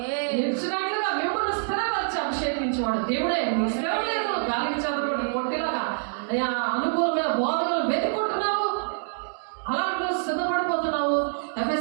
నిలిచినట్లుగా మిమ్మల్ని స్థిరపరిచి అభిషేకించేవాడు దేవుడే. మీ స్థిరం లేదు, గాలికి చదవడం కొట్టిలాగా అనుకూలమైన బోధనలు వెతుకుంటున్నావు, అలాంటి సిద్ధపడిపోతున్నావు.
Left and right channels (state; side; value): silent; left; digital silence